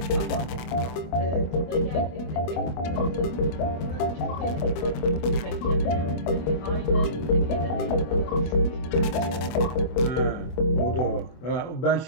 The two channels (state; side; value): late; right; 25 ms